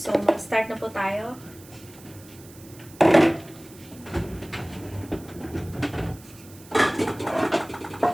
mag-start na po tayo.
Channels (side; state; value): right; noise; hiss, 22 dB below the sound